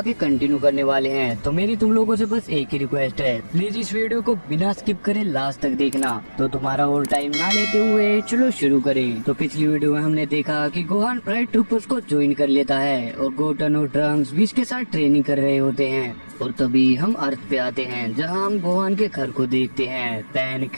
कंटिन्यू करने वाले हैं। तो मेरी तुम लोगों से बस एक ही रिक्वेस्ट है, प्लीज इस वीडियो को बिना स्किप करे लास्ट तक देखना। तो तुम्हारा और टाइम ना लेते हुए चलो शुरू करें। तो पिछली वीडियो में हमने देखा कि गोहान प्राइड ट्रूपर्स को ज्वाइन कर लेता है और गोटन और ट्रंक्स बीच के साथ ट्रेनिंग कर रहे होते हैं। और तभी हम अर्थ पे आते हैं, जहां हम गोहान के घर को देखते हैं। पैन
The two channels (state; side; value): inverted; both; correlation -1.00